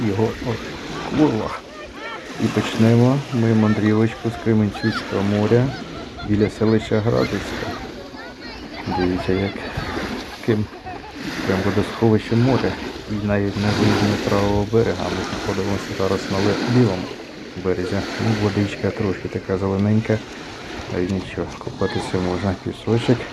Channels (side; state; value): both; identical; correlation 1.00